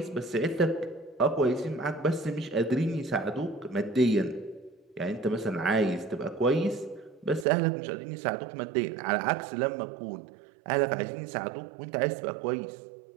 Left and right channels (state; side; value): drops out; left; at 7.5 s